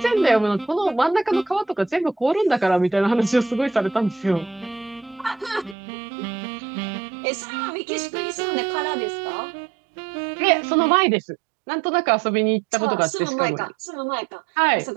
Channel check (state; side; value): drops out; left; at 5.8 s